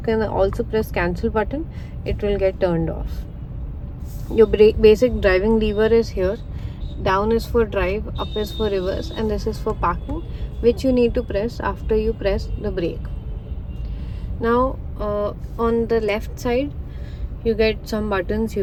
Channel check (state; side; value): identical; both; correlation 1.00